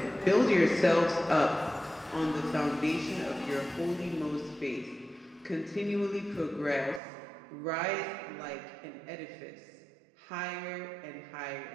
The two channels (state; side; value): drops out; left; at 7.0 s